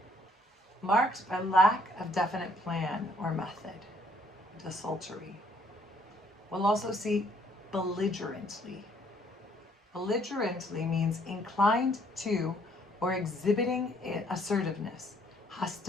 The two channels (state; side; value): normal; both; correlation 0.65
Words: marked by lack of definite plan or method. Desultory. We'll also see belligerently. Belligerently means inclined to or exhibiting assertiveness,